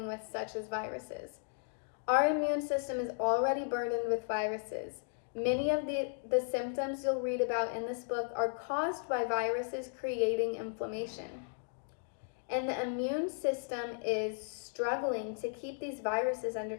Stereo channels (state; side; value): silent; right; digital silence